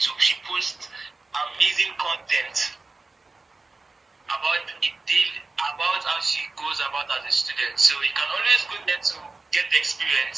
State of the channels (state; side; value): quieter; left; 3.6 dB